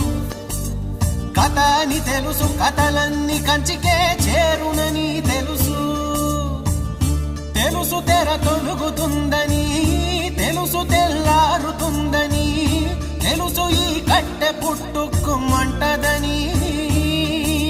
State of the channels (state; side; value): identical; both; correlation 1.00